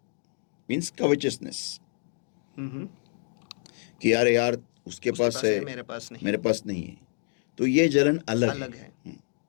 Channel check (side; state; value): right; silent; digital silence